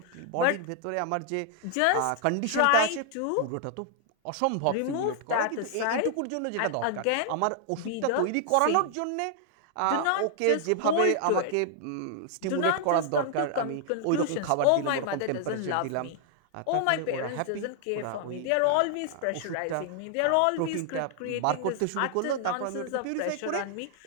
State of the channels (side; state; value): both; different; correlation 0.00